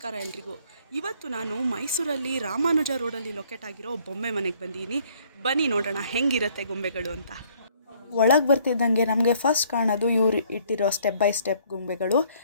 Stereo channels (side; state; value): both; inverted; correlation -0.62